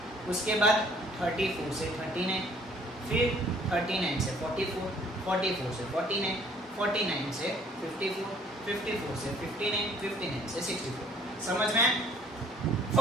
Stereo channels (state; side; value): normal; both; correlation 0.58